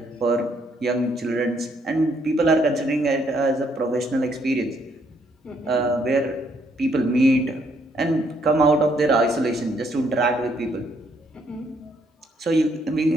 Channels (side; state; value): both; normal; correlation 0.70